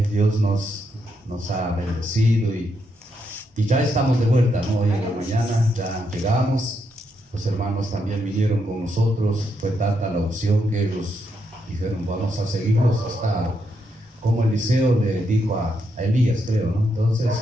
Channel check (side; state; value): both; normal; correlation 0.80